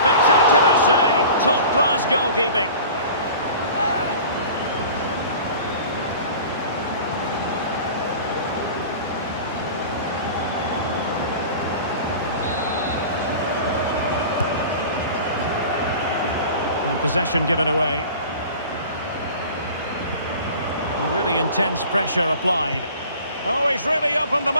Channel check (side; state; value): both; inverted; correlation -0.41